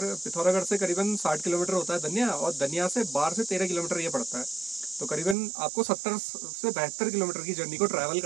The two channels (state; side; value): drops out; left; at 5.4 s